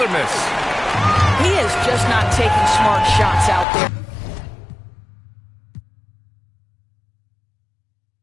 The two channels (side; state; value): right; drops out; at 3.7 s